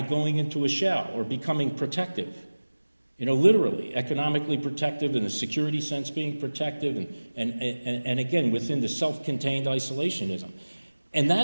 going into a shell or becoming protective. Literally, economically protective, in the security sense being protective, and again, within the self-contained isolationism. And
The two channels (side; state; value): both; inverted; correlation -1.00